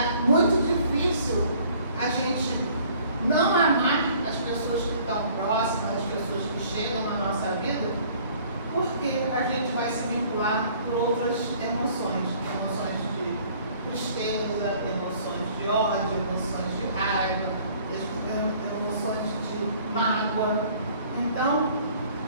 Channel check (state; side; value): inverted; both; correlation -0.56